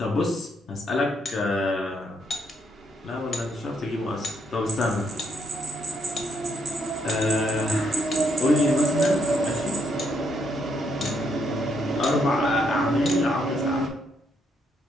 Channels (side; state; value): both; normal; correlation 0.75